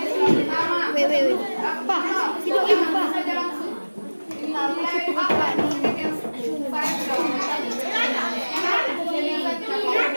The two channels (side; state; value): both; inverted; correlation -1.00